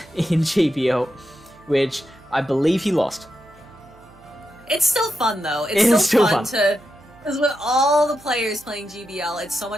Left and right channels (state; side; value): noise; right; hum, 26 dB below the sound